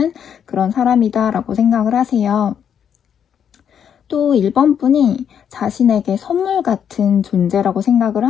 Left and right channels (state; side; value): quieter; right; 8.4 dB